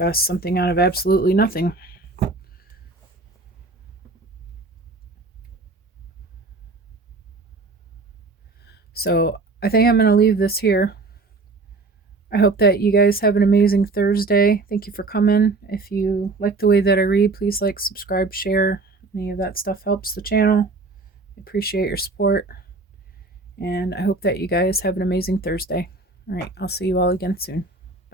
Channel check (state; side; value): quieter; left; 3.6 dB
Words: something out of absolutely nothing. So I think I'm going to leave this here. I hope that you guys have an amazing Thursday. Thank you for coming. If you like the way that I read, please like, subscribe, share. Any of that stuff helps the channel. I appreciate your support. And I hope that you guys have an amazing Thursday. All right, I'll see you all again soon.